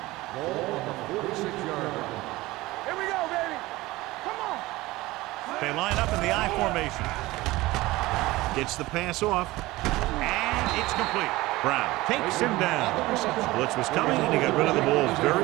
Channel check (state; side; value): quieter; left; 19.3 dB